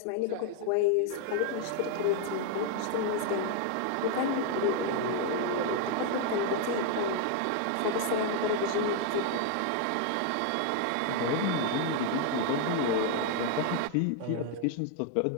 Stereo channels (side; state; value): both; different; correlation 0.01